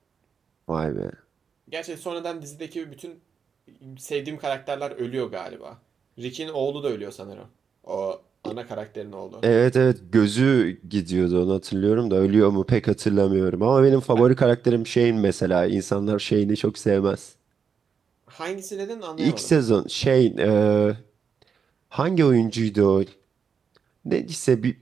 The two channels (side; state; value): left; quieter; 6.4 dB